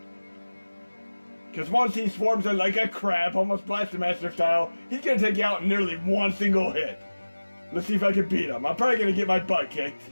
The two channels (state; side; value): inverted; both; correlation -1.00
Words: Because once he swarms in like a crab, almost Blaster Master style, he's going to take you out in nearly one single hit. Let's see if I can beat him. I'm probably going to get my butt kicked.